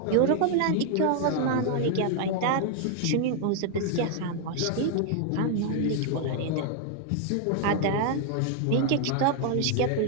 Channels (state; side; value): different; both; correlation 0.00